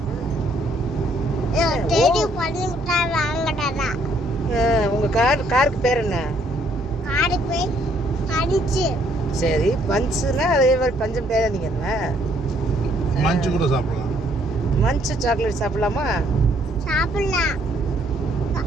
தேடி பஞ்சு மிட்டாய் வாங்கடா. உங்க காருக்கு பேர் என்ன? காருக்கு பேர் பஞ்சு. சரி, பஞ்சுனா அதே மாதிரி பஞ்சு மிட்டாய் நீங்க என்ன? மஞ்சு கூட சாப்பிடலாம். மஞ்சு சாக்லேட் சாப்பிடலாமா? சாப்பிடலாம்.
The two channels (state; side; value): normal; both; correlation 0.67